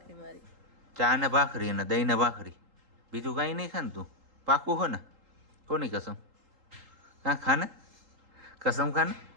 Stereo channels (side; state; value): left; late; 3.8 ms